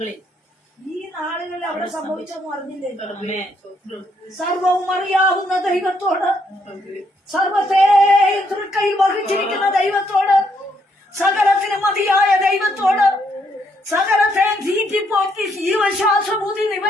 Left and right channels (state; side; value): normal; both; correlation 0.73